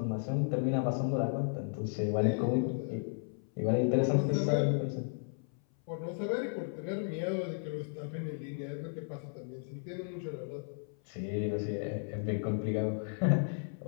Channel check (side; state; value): right; silent; 55 dB below the other